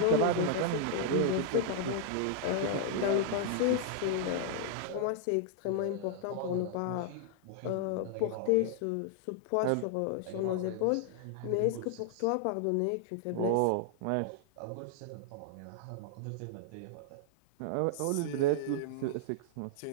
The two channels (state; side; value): different; both; correlation -0.01